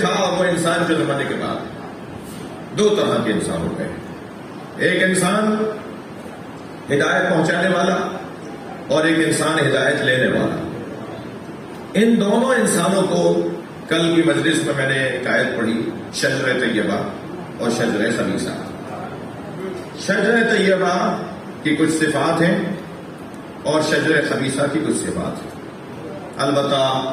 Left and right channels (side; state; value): both; identical; correlation 1.00